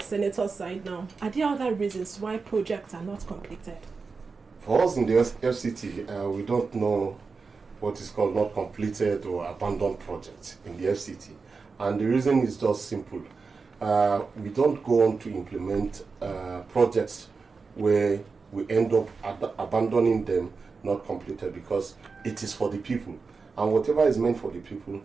side now? Are there other reasons why projects are not completed? For us in the FCT, we don't know what is called not completed or abandoned projects in the FCT. And the reason is just simple. We don't go on to implement projects where we end up abandoning them, not completed, because it is for the people. And whatever is meant for the people,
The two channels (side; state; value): left; quieter; 4.6 dB